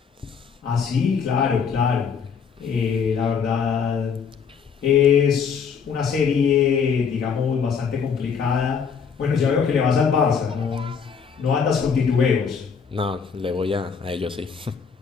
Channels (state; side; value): quieter; right; 6.4 dB